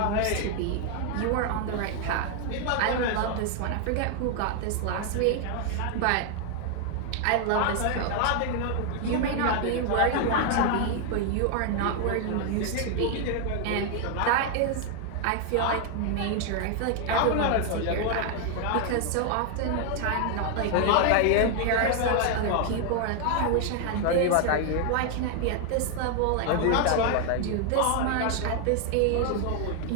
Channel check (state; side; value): different; both; correlation 0.00